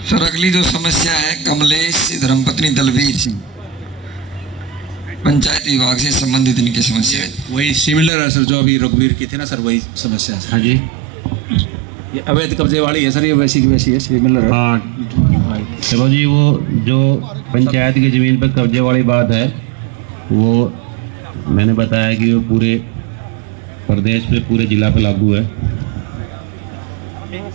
सर अगली जो समस्या है कमलेश धर्मपत्नी दलवीर सिंह, पंचायत विभाग से संबंधित इनकी समस्या है। वही सिमिलर है सर, जो अभी रघुवीर की थी ना सर, वही समस्या है। हाँ जी, ये अवैध कब्जे वाली है सर, ये वैसी की वैसी है, सिमिलर है। हाँ चलो जी, वो जो पंचायत की ज़मीन पर कब्जे वाली बात है वो मैंने बताया कि वो पूरे प्रदेश पे, पूरे जिला पे लागू है।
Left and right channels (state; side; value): drops out; left; at 8.1 s